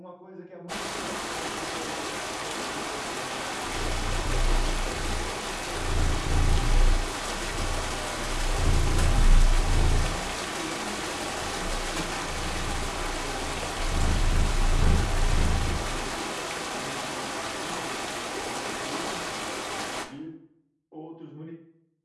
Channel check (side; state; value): both; identical; correlation 1.00